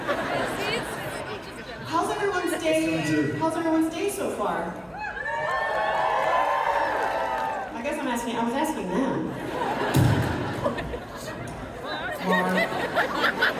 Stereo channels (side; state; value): both; identical; correlation 1.00